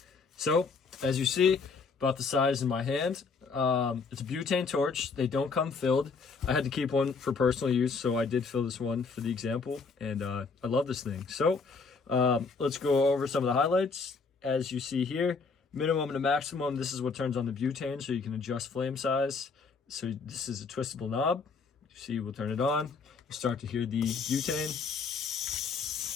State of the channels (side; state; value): right; quieter; 4.7 dB